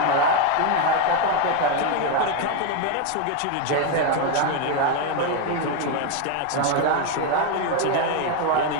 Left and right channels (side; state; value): both; different; correlation 0.02